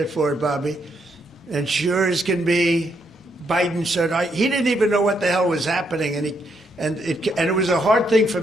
for it, Bobby. And sure as can be, Biden said, he didn't even know what the hell was happening, and it was a hard thing for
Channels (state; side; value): normal; both; correlation 0.76